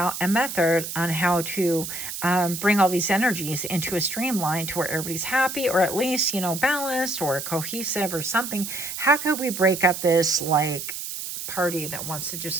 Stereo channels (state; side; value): noise; right; hiss, 7 dB below the sound